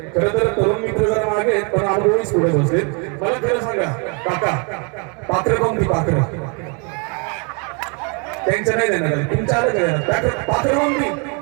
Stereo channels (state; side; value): quieter; left; 35.4 dB